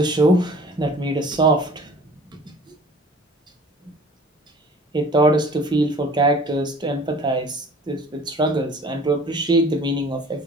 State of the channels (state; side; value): normal; both; correlation 0.47